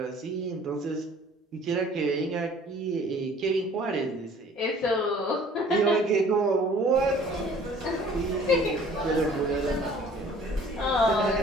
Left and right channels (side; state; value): both; normal; correlation 0.52